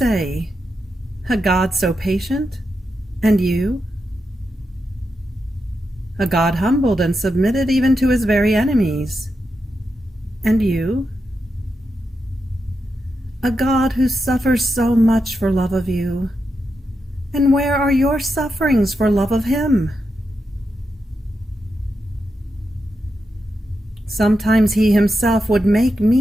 "A God so patient, and you?" A God humbled and submitted even to his very enemies, and you? A God who suffers so much for love of you, and where are your sufferings for love of him? Sometimes he himself would make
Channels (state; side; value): normal; both; correlation 0.86